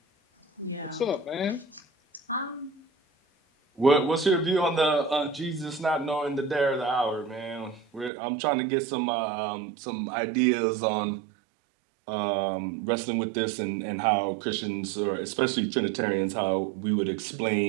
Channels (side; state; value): left; drops out; at 8.1 s